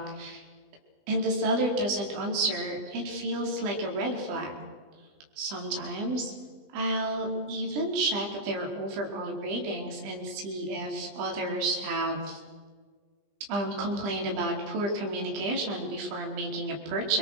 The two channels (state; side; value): late; left; 20 ms